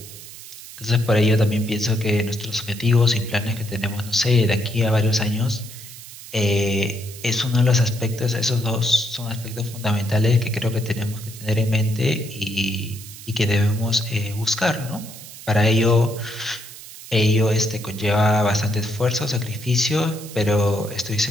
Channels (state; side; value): noise; right; hiss, 15 dB below the sound